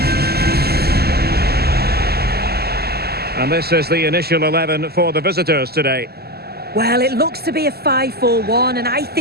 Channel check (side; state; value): left; late; 0.46 ms